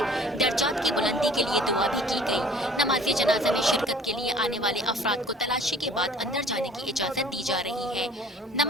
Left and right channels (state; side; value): normal; both; correlation 0.50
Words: दर्जात की बुलंदी के लिए दुआ भी की गई। नमाज जनाजा में शिरकत के लिए आने वाले अफराद को तलाशी के बाद अंदर जाने की इजाज़त दी जा रही है।